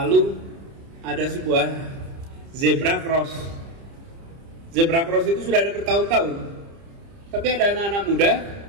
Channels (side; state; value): left; late; 30 ms